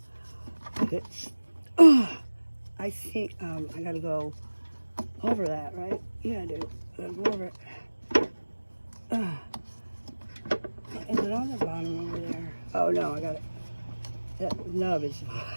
It's. I think I gotta go over that, right? Yeah, I do. I gotta go over it. Is it on the bottom over there? Oh no, I got it. That nub is.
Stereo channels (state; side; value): inverted; both; correlation -1.00